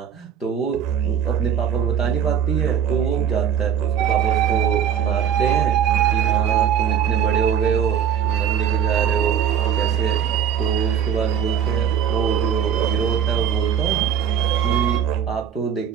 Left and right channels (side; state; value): left; quieter; 8.6 dB